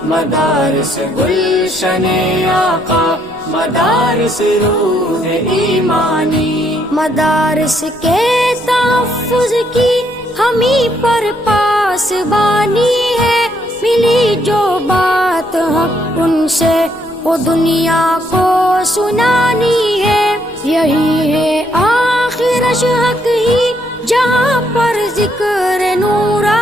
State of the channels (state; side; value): noise; left; rumble, 26 dB below the sound